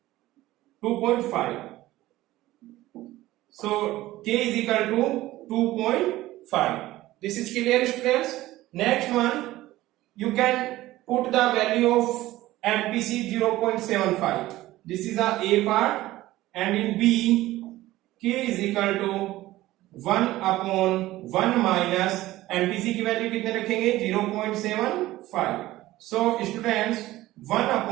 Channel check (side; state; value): left; quieter; 16.5 dB